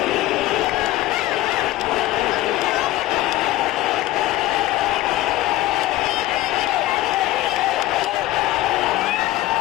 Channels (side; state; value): right; quieter; 16.4 dB